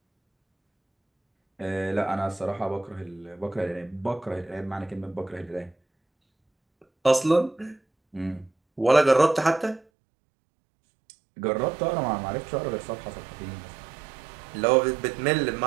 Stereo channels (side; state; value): left; drops out; at 9.8 s